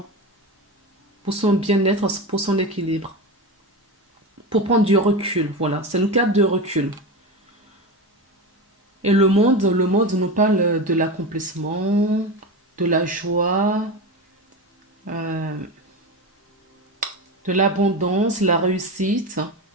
Pour son bien-être, pour son équilibre. Pour prendre du recul, voilà. C'est une carte de recul. Et le monde nous parle de l'accomplissement, de la joie, euh, de l'abondance, la réussite.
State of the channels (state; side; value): normal; both; correlation 0.22